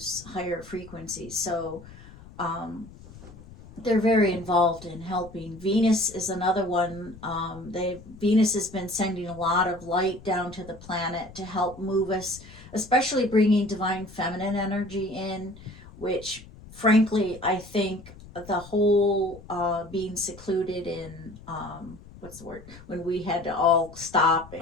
higher frequencies. So um, they're very involved in helping. Venus is another one. Venus has been sending a lot of light down to the planet to help move us, especially bringing divine feminine energy in, which frankly I think the whole being secluded in what's the word, when we had to all stop and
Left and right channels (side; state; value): left; noise; rumble, 19 dB below the sound